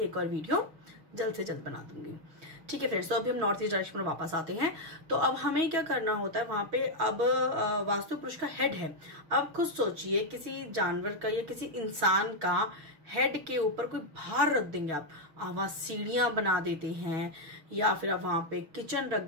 और वीडियो जल्द से जल्द बना दूंगी। ठीक है फ्रेंड्स, तो अभी हम नॉर्थ ईस्ट डायरेक्शन में वापस आते हैं। तो अब हमें क्या करना होता है, वहां पे अब वास्तु पुरुष का हेड है। अब खुद सोचिए, किसी जानवर का या किसी इंसान का हेड के ऊपर कोई भार रख देंगे आप वहां सीढ़ियां बना देते हैं, या फिर आप वहां पे किचन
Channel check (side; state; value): left; late; 6.2 ms